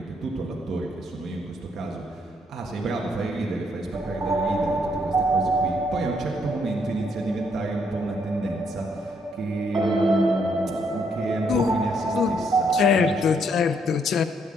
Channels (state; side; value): normal; both; correlation 0.72